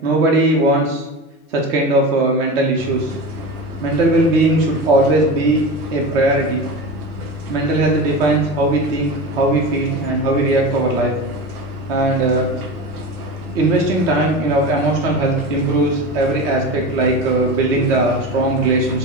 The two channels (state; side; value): normal; both; correlation 0.27